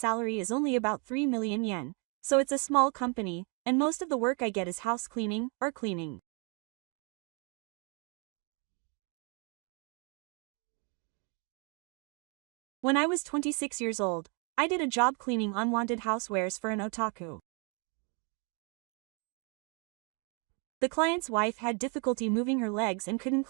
is only about 3 million yen, so it's a small company, and most of the work I get is house cleaning or cleaning. When I was 26 years old, I did a job cleaning unwanted housewares for an otaku. The client's wife had difficulty moving her legs and couldn't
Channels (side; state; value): left; quieter; 36.2 dB